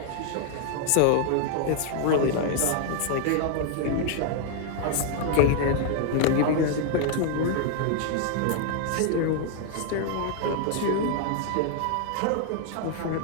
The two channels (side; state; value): both; different; correlation 0.00